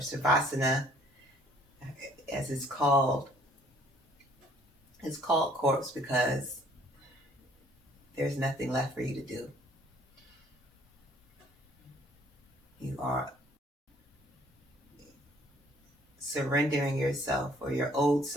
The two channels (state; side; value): normal; both; correlation 0.60